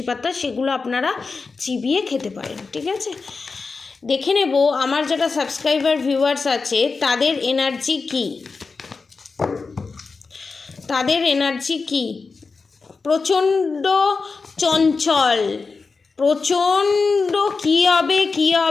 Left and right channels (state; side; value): quieter; right; 4.4 dB